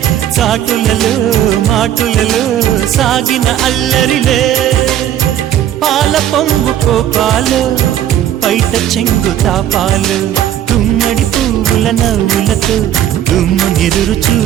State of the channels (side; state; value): left; quieter; 11.1 dB